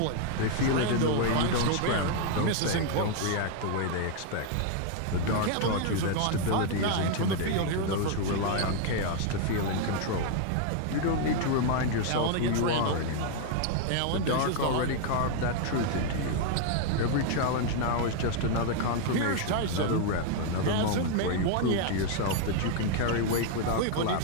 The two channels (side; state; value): both; different; correlation 0.00